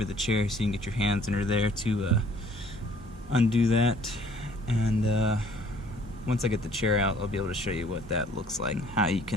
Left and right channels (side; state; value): both; normal; correlation 0.57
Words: the chair, so you can get your hands under there to undo that. And once I get the chair out, I'll be able to show you what that looks like, how you